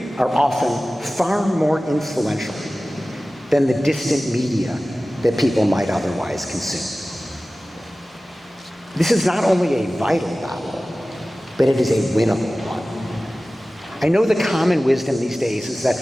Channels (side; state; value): both; normal; correlation 0.97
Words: are often far more influential than the distant media that people might otherwise consume. This is not only a vital battle, but it is a winnable one. I know the common wisdom these days is